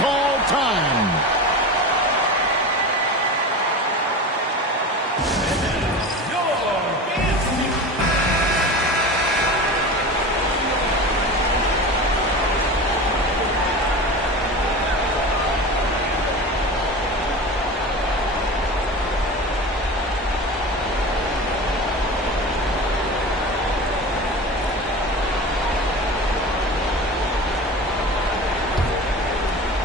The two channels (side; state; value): both; normal; correlation 0.30